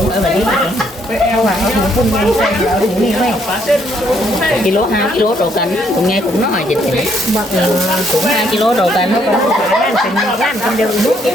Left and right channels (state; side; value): normal; both; correlation 0.70